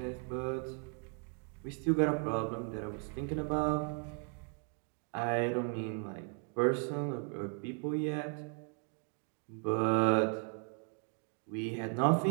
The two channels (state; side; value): quieter; left; 39.8 dB